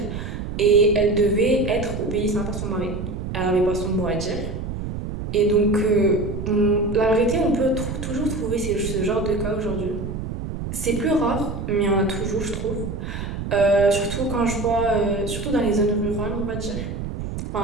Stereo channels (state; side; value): noise; right; rumble, 6 dB below the sound